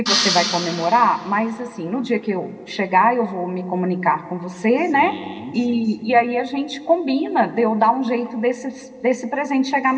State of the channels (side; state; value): both; identical; correlation 1.00